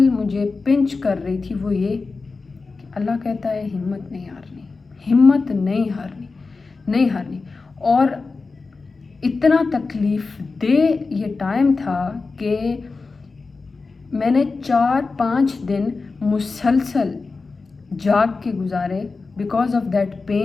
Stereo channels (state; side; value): quieter; right; 4.1 dB